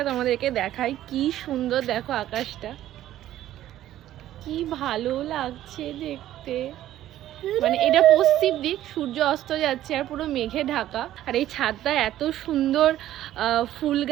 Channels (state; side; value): quieter; left; 13.1 dB